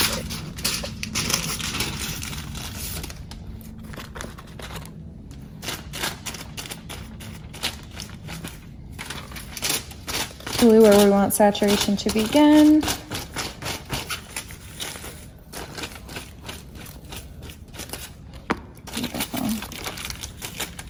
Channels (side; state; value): both; identical; correlation 1.00